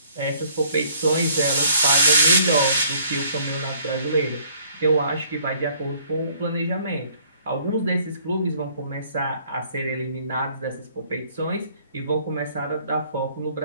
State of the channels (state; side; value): inverted; both; correlation -0.60